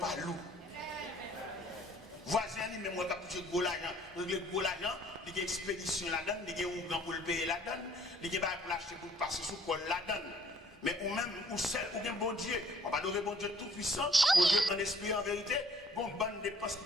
loup. Voisin lui même qui a touché gros l'argent, gros l'argent, il y a expédition là-dedans, il y a un pour le payer là-dedans, il y a pour l'acheter pour passer sous col là-dedans. Mais ou même, ou seul, ou bien bon Dieu, on va adorer bon Dieu tout puissant, bon Dieu en esprit en vérité, bon bonne dépense qui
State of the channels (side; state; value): both; normal; correlation 0.59